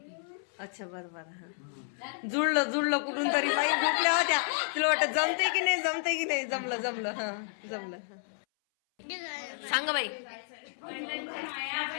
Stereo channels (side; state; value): right; silent; 57 dB below the other